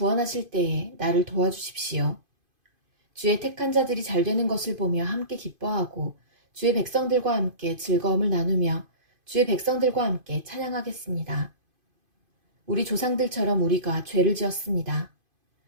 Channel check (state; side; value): late; left; 2.5 ms